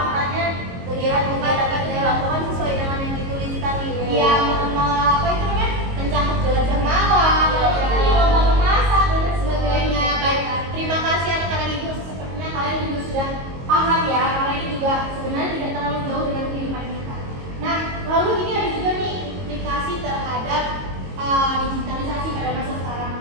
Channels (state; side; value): late; left; 22 ms